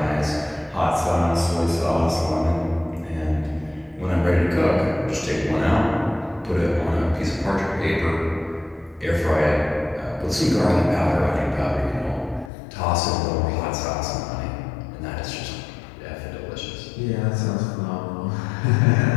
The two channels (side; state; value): right; drops out; at 12.5 s